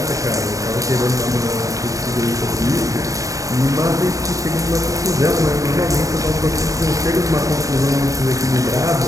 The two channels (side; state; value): left; late; 0.16 ms